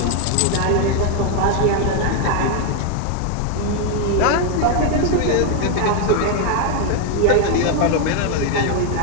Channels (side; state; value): both; different; correlation 0.01